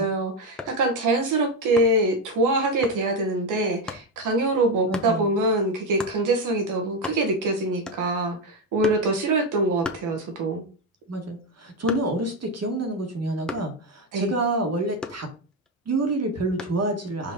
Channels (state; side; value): normal; both; correlation 0.10